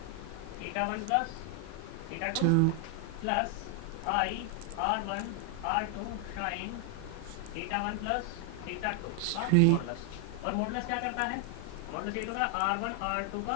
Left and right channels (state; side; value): different; both; correlation 0.00